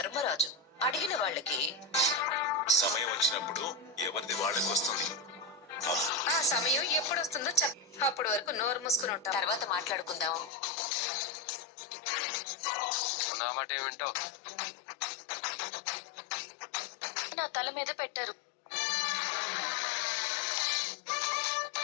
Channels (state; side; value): drops out; right; at 10.5 s